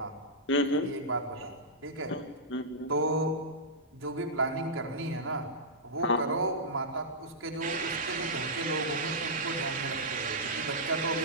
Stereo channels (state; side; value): normal; both; correlation -0.13